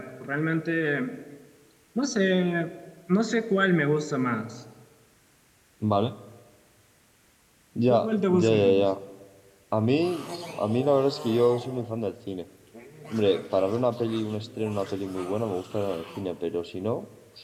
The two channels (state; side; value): identical; both; correlation 1.00